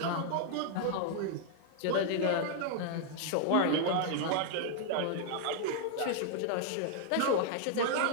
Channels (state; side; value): different; both; correlation 0.00